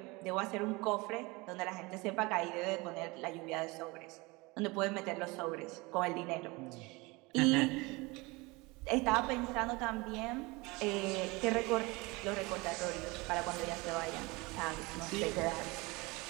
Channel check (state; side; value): quieter; left; 24.5 dB